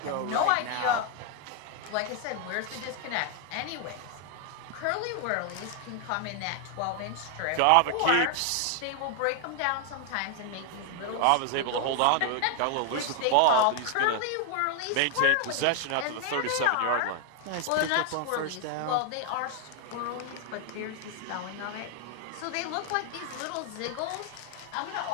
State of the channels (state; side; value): different; both; correlation 0.00